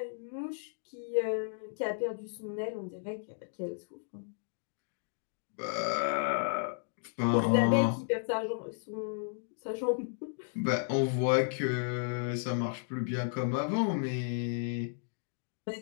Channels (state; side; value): silent; right; digital silence